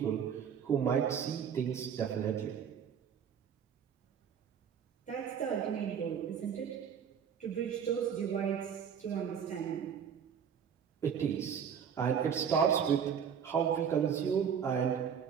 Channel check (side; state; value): left; quieter; 7.7 dB